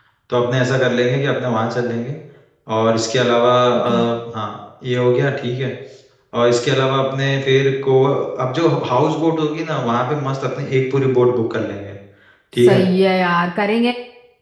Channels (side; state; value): both; identical; correlation 1.00